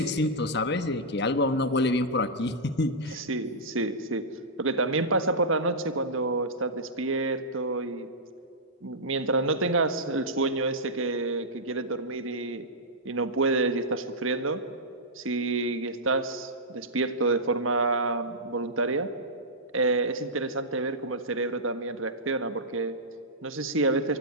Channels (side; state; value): both; normal; correlation -0.12